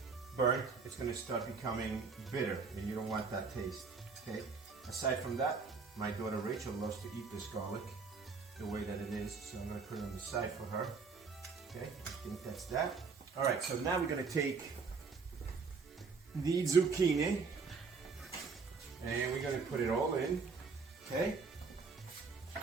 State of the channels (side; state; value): left; quieter; 4.9 dB